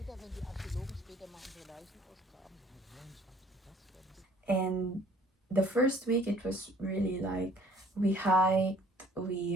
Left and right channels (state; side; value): normal; both; correlation 0.56